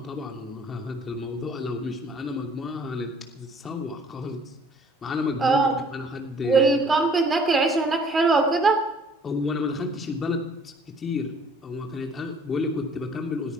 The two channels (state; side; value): normal; both; correlation 0.57